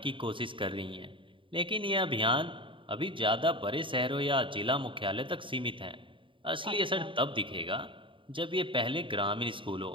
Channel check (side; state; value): left; late; 0.25 ms